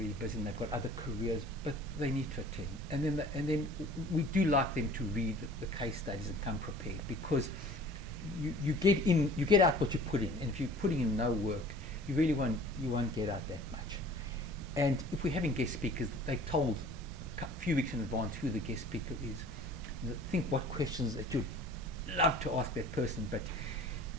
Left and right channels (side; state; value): both; normal; correlation 0.47